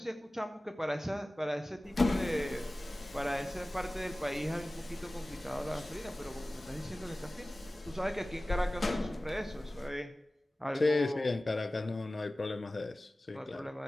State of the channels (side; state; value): both; normal; correlation 0.97